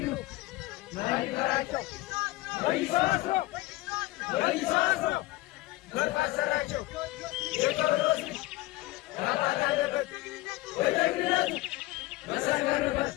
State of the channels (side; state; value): right; quieter; 18.8 dB